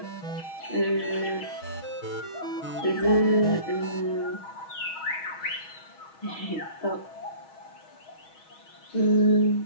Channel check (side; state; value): right; late; 6.3 ms